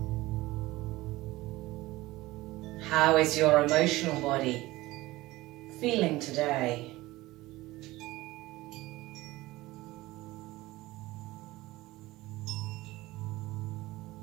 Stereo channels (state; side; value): quieter; left; 18.8 dB